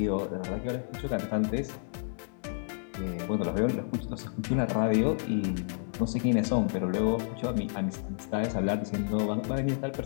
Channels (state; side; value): silent; right; digital silence